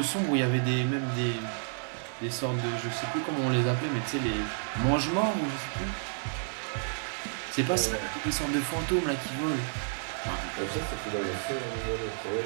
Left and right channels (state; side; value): silent; left; digital silence